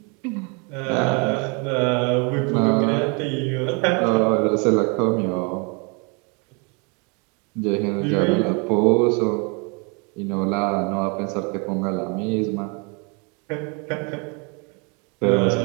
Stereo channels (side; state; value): left; quieter; 33.1 dB